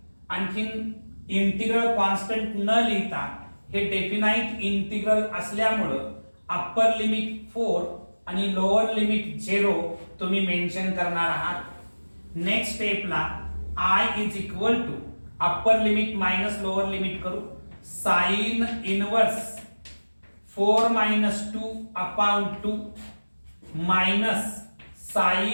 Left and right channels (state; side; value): inverted; both; correlation -1.00